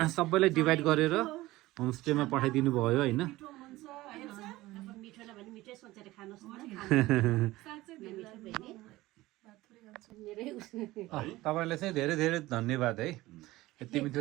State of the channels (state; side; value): quieter; left; 18.2 dB